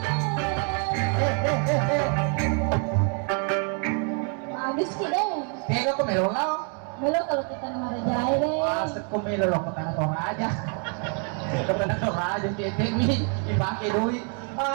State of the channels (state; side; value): quieter; left; 39.6 dB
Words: Melo kalau kita marajai deh. Asik ko may loloko ka na to aja. Ito ka na to aja, titik mi. Ipake duit.